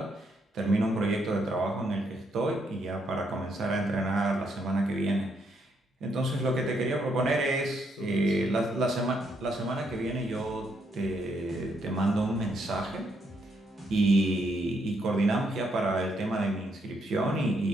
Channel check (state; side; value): normal; both; correlation 0.75